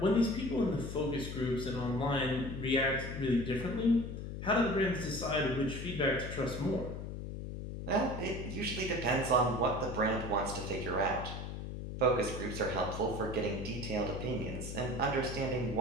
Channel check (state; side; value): noise; left; hum, 7 dB below the sound